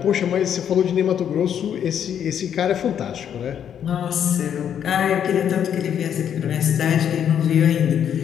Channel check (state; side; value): quieter; right; 9.0 dB